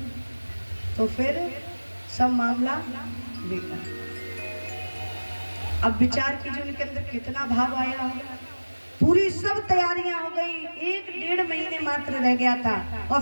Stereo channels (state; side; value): inverted; both; correlation -1.00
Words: तो फिर सब मामला बेकार। अब विचार कीजिए उनके अंदर कितना भाव आया होगा। पूरी सब तैयारियां हो गई, 1-1.5 महीने मात्र रह गया था और